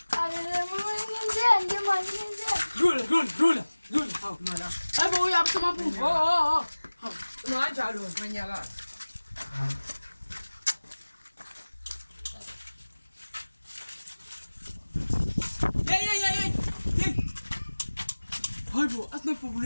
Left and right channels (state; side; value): inverted; both; correlation -1.00